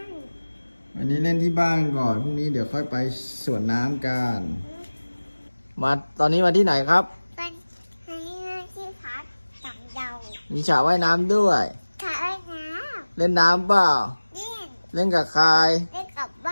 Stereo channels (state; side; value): inverted; both; correlation -1.00